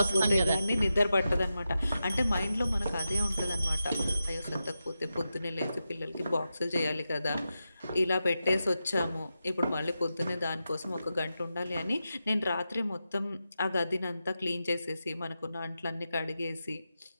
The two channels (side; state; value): both; inverted; correlation -0.90